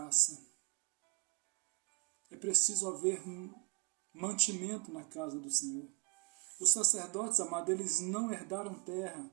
É preciso haver um mantimento na casa do Senhor. Os sacerdotes, amados, eles não herdaram terra,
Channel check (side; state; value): left; quieter; 35.2 dB